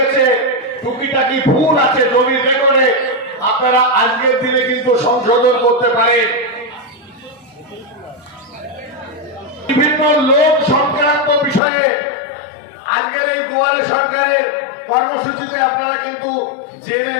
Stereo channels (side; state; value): right; drops out; at 11.6 s